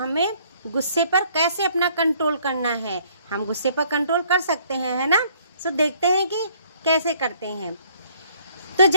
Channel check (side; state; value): both; inverted; correlation -0.62